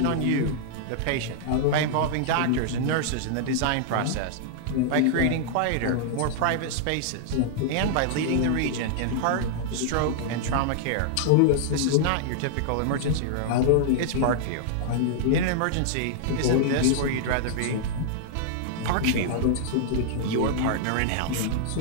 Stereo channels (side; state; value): both; different; correlation -0.01